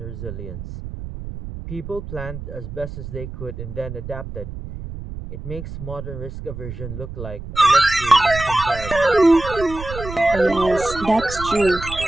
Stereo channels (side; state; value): right; noise; rumble, 10 dB below the sound